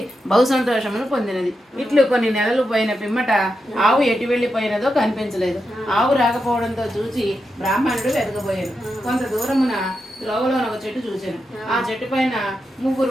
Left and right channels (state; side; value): normal; both; correlation 0.87